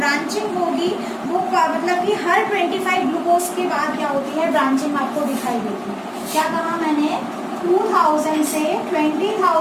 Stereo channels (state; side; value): identical; both; correlation 1.00